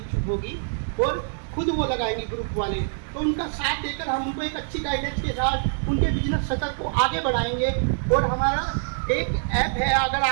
होगी, और खुद वो लगाएंगे ग्रुप वाले, तो उनका साथ देकर हम उनको एक अच्छी गाइडेंस के साथ उनके बिजनेस सेटल को आगे बढ़ाएंगे। और हमारा एक ऐप है, अगर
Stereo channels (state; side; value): silent; left; digital silence